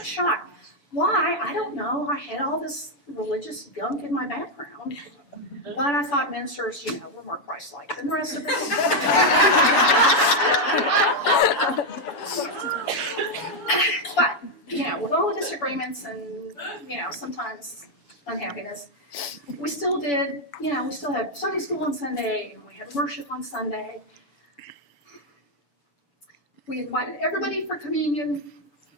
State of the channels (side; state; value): right; late; 7.0 ms